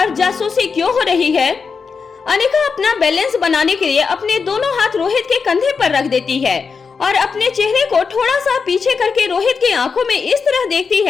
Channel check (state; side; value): quieter; right; 5.4 dB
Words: जासूसी क्यों हो रही है? अनिका अपना बैलेंस बनाने के लिए अपने दोनों हाथ रोहित के कंधे पर रख देती है और अपने चेहरे को थोड़ा सा पीछे करके रोहित की आंखों में इस तरह देखती